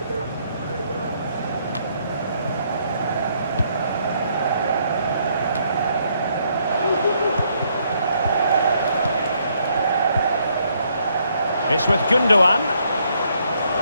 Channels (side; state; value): both; inverted; correlation -0.71